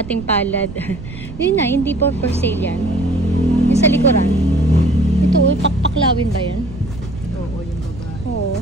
palad. Yun na, hindi po for sale yan. Yung sa likuran. Ito, pakpaklawin ba yan? Oo, yung babae. Oo.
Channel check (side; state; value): right; noise; rumble, 12 dB below the sound